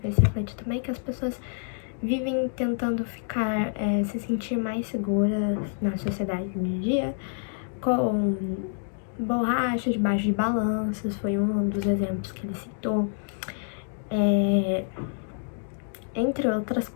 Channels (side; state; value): right; silent; digital silence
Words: refletir também, que as pessoas vivem tentando ficar, se sentir mais seguras na sociedade de dia, com borracha debaixo de balanças, foi um dos exemplos que ele citou. Entre outras